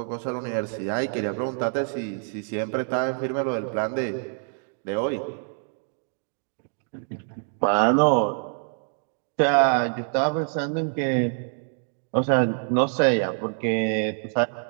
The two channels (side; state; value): left; silent; 61 dB below the other